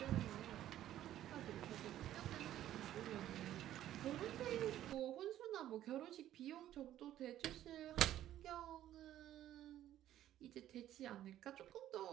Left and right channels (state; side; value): quieter; left; 12.5 dB